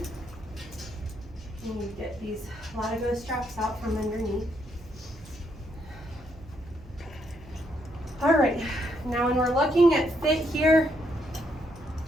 And you get these Latigo straps out from underneath. All right, now when we're looking at fit here,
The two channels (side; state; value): right; noise; hum, 19 dB below the sound